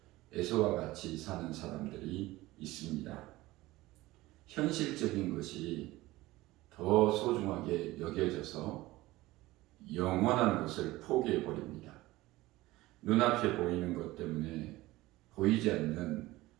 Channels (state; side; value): quieter; left; 18.5 dB